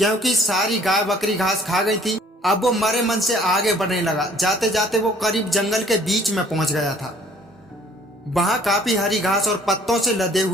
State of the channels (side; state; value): both; normal; correlation 0.57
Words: सारी गाय बकरी घास खा गई थी। अब वो मरे मन से आगे बढ़ने लगा। जाते जाते वो करीब जंगल के बीच में पहुंच गया था। वहां काफी हरी घास और पत्तों से लदे